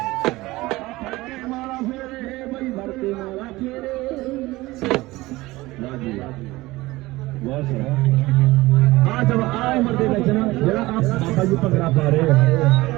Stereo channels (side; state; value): left; quieter; 19.6 dB